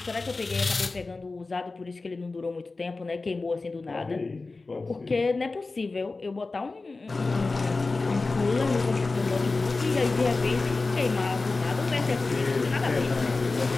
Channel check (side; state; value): right; quieter; 3.6 dB